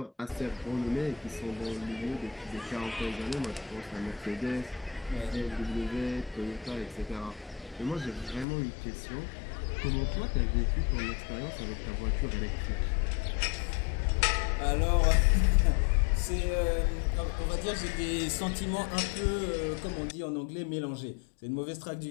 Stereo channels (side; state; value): right; drops out; at 8.5 s